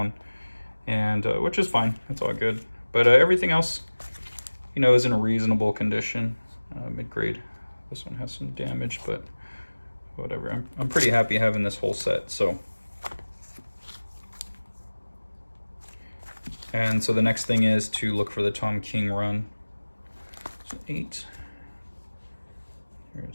and which is fine. It's all good. But everything else, is in a reasonable condition, mid-grade. This one has some damage, but whatever. I'm pretty happy having this whole set. So, and so the next thing is to look for the Tom King run. So 8.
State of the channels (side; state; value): both; inverted; correlation -1.00